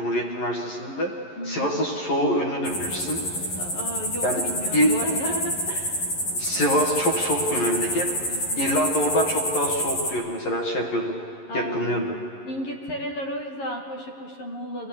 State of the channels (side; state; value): right; late; 11 ms